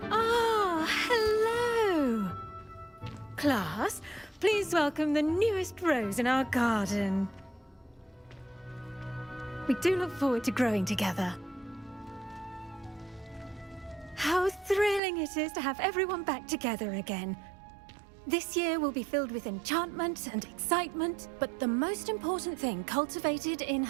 Ah, hello. Class, please welcome the newest rose in our garden. We do look forward to growing together. How thrilling it is to have everyone back together again. This year will be filled with enchantment and excitement, but the most important thing cultivated in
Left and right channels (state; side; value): drops out; left; at 15.0 s